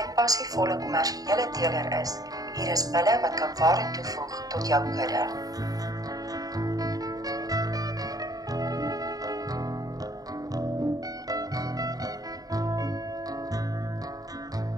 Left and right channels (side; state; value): left; late; 0.18 ms